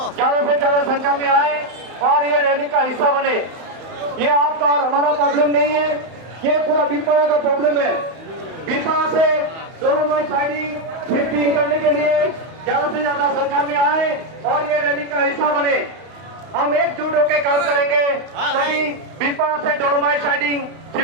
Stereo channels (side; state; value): left; late; 31 ms